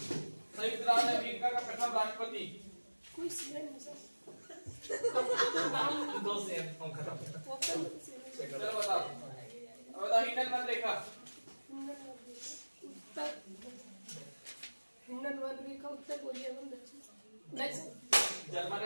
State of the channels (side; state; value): both; inverted; correlation -1.00